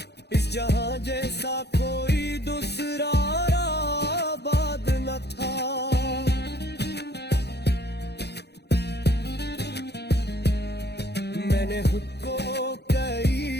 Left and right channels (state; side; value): late; right; 0.48 ms